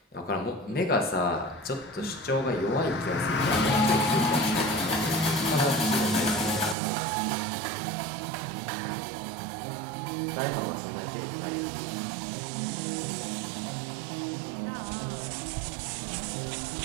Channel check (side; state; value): left; drops out; at 6.8 s